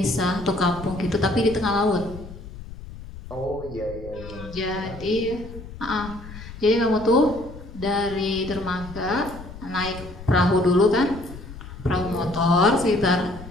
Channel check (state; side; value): noise; left; rumble, 14 dB below the sound